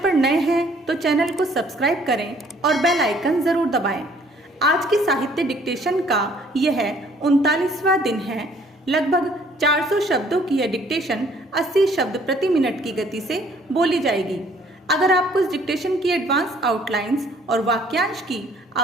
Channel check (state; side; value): normal; both; correlation 0.60